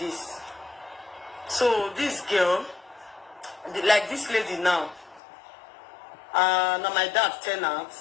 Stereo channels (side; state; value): right; drops out; at 5.2 s